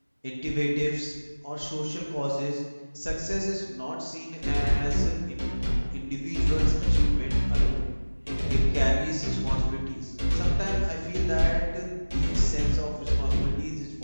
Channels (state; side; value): inverted; both; correlation -1.00